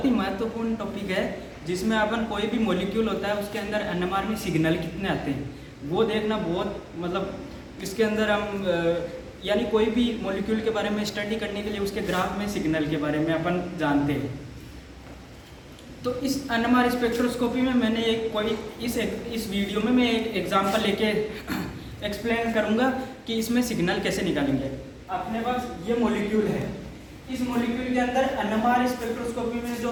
ही महत्वपूर्ण टॉपिक है जिसमें अपन कोई भी मॉलिक्यूल होता है उसके अंदर एनएमआर में सिग्नल कितने आते हैं वो देखना बहुत इसके अंदर हम यानी कोई भी मॉलिक्यूल के बारे में स्टडी करने के लिए उसके ग्राफ में सिग्नल के बारे में अपन जानते हैं। तो इस एनएमआर स्पेक्ट्रोस्कोपी में मैंने इस वीडियो में मैं एक एग्जांपल लेके एक्सप्लेन करूंगा कि इसमें सिग्नल कैसे निकालेंगे। अपने पास ये मॉलिक्यूल है, इस मॉलिक्यूल के अंदर एनएमआर स्पेक्ट्रोस्कोपी में जो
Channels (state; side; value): identical; both; correlation 1.00